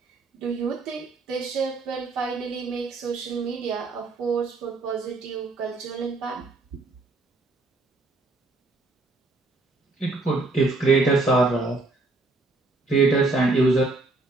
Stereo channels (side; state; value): left; quieter; 3.3 dB